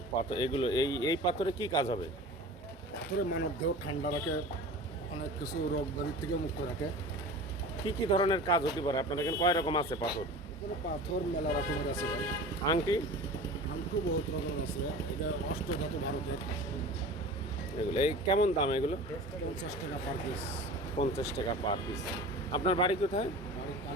পাথর এগুলো, এই পাথরে কি কাজ হবে? পাথরে মানব দেহ ঠান্ডা রাখে, অনেক কিছু রোগ ব্যাধির থেকে মুক্ত রাখে। কি কি ধরনের কাজ হতে পারে? আপনার এখানে কয় রকম আছে পাথর? এখানে পাথর মেলা রকমের আছে ভাই। আংটি আংটি বহুত রকমের আছে। এটা অষ্টধাতু ভারতের। এগুলো এই কেমন দাম এগুলো? 50 টাকা পার পিস। 50 টাকা পার পিস। আপনার বাড়ি কোথায়? বাড়ি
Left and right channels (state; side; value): normal; both; correlation 0.37